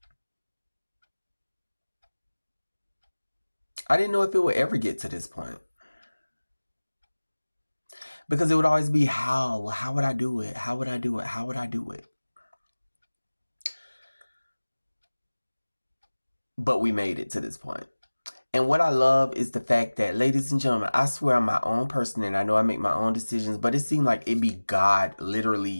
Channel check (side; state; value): both; inverted; correlation -1.00